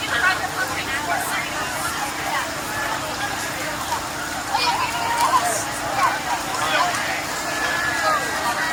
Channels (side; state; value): both; identical; correlation 1.00